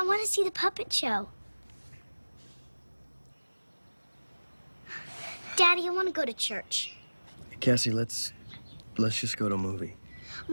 want to see the puppet show. Daddy, I want to go to church. Cassie, let's just go to a movie. I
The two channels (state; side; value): inverted; both; correlation -1.00